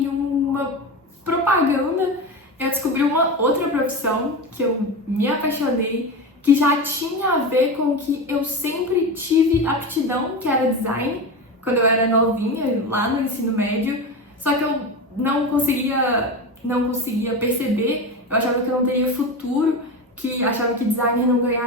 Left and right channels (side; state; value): both; normal; correlation 0.22